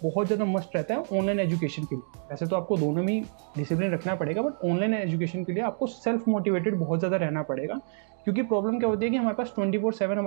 बहुत ज़्यादा मस्ट रहता है ऑनलाइन एजुकेशन के लिए। वैसे तो आपको दोनों में ही डिसिप्लिन रखना पड़ेगा, बट ऑनलाइन एजुकेशन के लिए आपको सेल्फ मोटिवेटेड बहुत ज़्यादा रहना पड़ेगा। क्योंकि प्रॉब्लम क्या होती है कि हमारे पास 24/7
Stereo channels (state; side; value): silent; left; digital silence